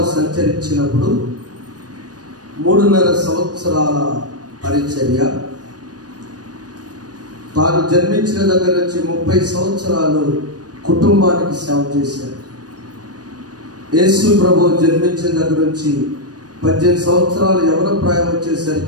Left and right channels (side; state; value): left; late; 0.69 ms